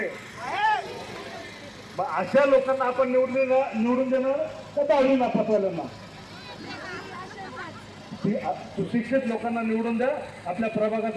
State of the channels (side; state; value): both; identical; correlation 1.00